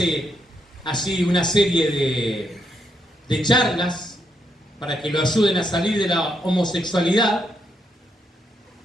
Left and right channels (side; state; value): both; normal; correlation 0.78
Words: así una serie de charlas para que lo ayuden a salir de la homosexualidad,